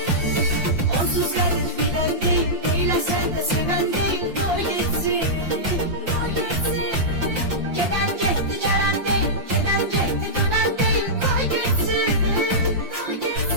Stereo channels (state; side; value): late; left; 5.8 ms